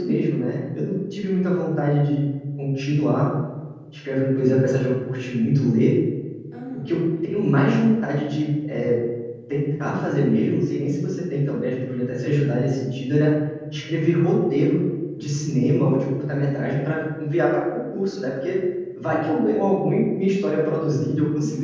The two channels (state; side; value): identical; both; correlation 1.00